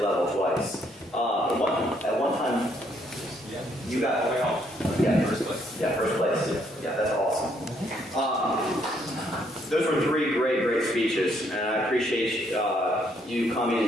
level twice. At one time, you got first place. Yeah, first place. Yeah, that's awesome. Those were three great speeches, and I appreciate you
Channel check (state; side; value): normal; both; correlation 0.70